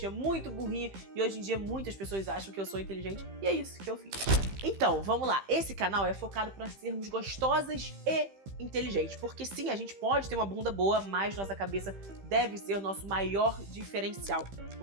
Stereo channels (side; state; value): left; late; 15 ms